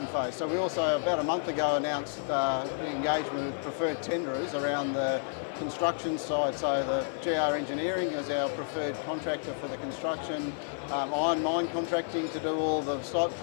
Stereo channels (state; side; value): silent; right; 57 dB below the other